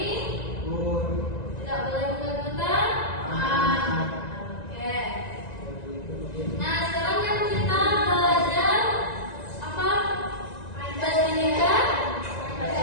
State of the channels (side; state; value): right; late; 1.9 ms